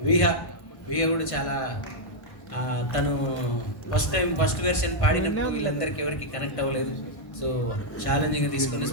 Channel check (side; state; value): right; late; 1.5 ms